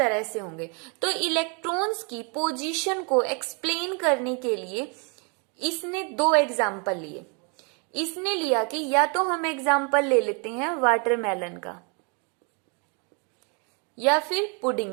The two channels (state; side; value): quieter; left; 35.5 dB